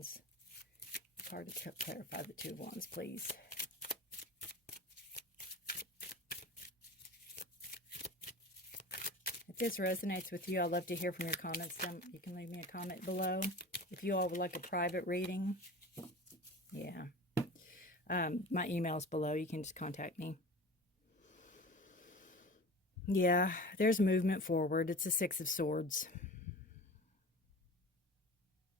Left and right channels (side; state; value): both; normal; correlation 0.36